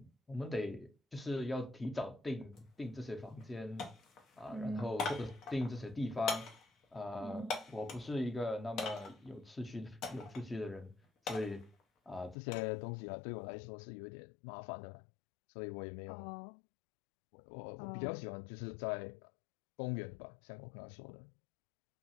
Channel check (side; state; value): right; drops out; at 12.4 s